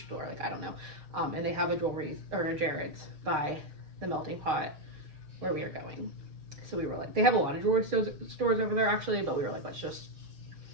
Like I don't know. And they have a jewelry or a Jared's by the melting pot where we are going. So we were like, they have a lot of jewelry stores over there actually, but we were like, let's just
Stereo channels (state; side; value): late; left; 6.5 ms